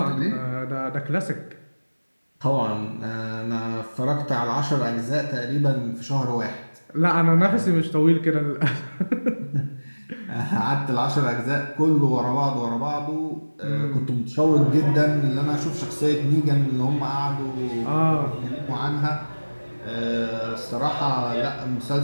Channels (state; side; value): inverted; both; correlation -1.00